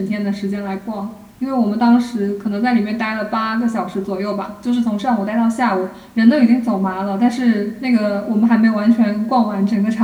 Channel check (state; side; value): identical; both; correlation 1.00